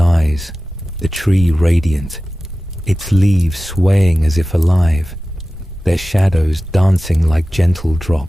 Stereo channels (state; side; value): normal; both; correlation 0.95